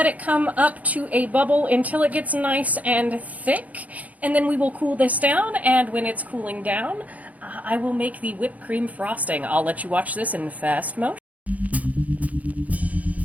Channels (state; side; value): late; left; 0.073 ms